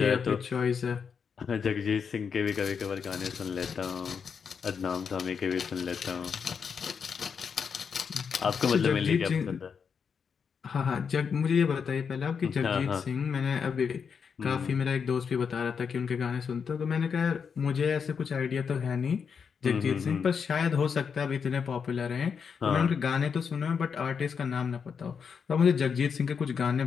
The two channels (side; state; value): right; quieter; 6.4 dB